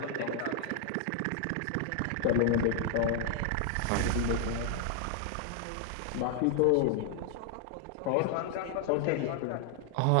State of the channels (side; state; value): both; different; correlation 0.00